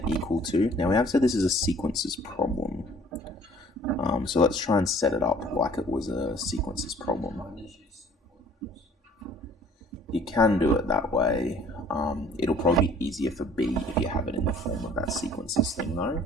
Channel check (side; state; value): both; normal; correlation 0.54